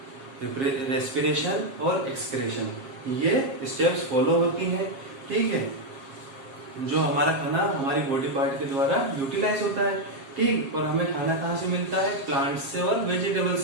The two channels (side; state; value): left; late; 7.4 ms